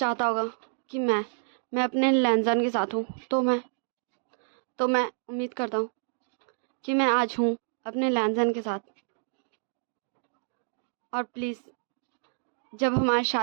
होगा कि मैं अपने लैंजान के साथ हूँ तो मैं उम्मीद करता हूँ कि मैं आज हूँ अपने लैंजान के साथ। और प्लीज़ जब हमारी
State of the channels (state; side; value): silent; left; digital silence